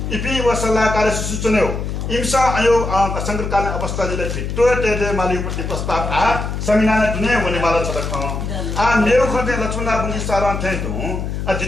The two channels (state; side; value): noise; left; hum, 4 dB below the sound